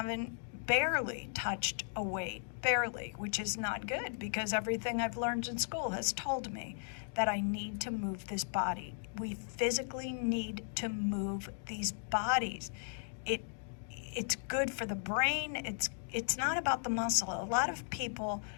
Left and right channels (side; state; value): right; silent; digital silence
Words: barely touched a weight, which is not good because everything I've learned in school has told me that I need to move this body. We physically need to move these bodies. It's good for the brain. It's not about the muscle. A lot of people